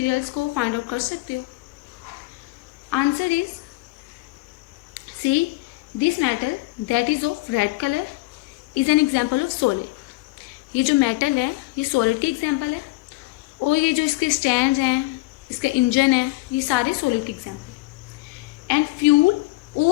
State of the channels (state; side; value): quieter; right; 21.4 dB